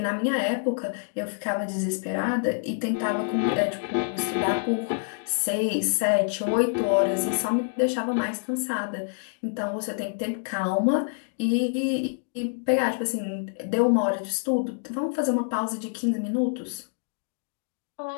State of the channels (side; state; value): right; silent; digital silence